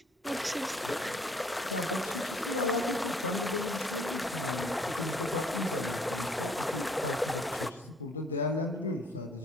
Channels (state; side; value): normal; both; correlation 0.60